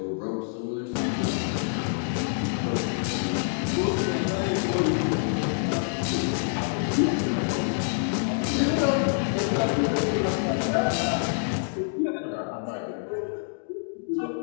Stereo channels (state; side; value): silent; right; digital silence